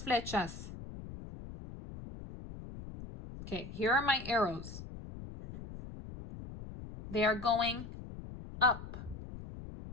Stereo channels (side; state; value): left; noise; rumble, 12 dB below the sound